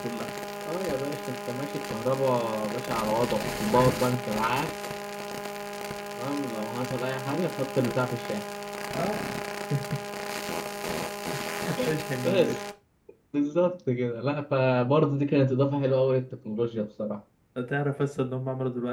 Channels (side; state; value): both; identical; correlation 1.00